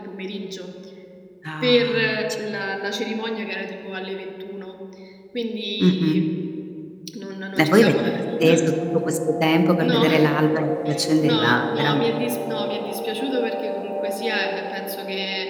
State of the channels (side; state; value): both; identical; correlation 1.00